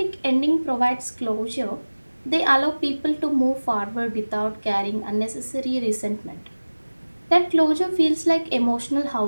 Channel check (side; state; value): both; inverted; correlation -1.00